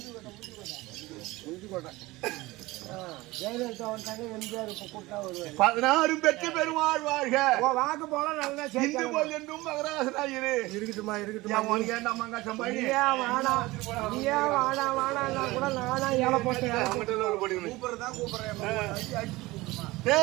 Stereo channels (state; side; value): quieter; left; 20.3 dB